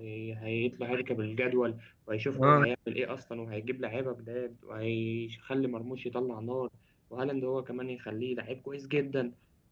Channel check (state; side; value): identical; both; correlation 1.00